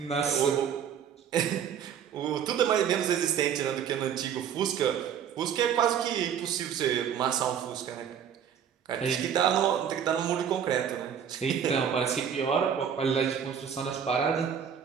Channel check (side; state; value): left; quieter; 8.3 dB